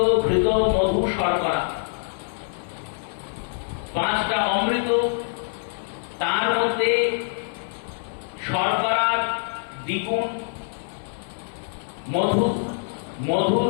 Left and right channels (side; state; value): right; silent; 60 dB below the other